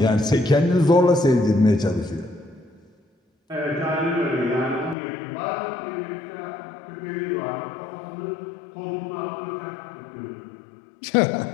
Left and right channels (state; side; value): drops out; right; at 5.0 s